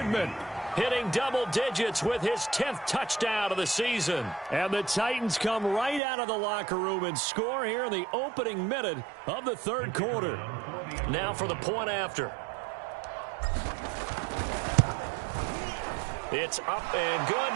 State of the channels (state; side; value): drops out; left; at 6.0 s